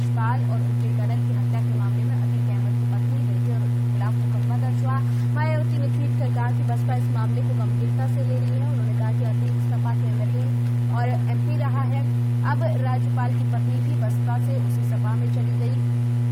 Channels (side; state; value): both; identical; correlation 1.00